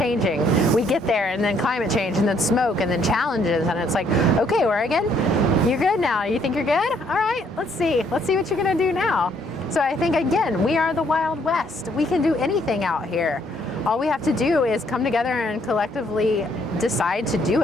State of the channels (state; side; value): normal; both; correlation 0.68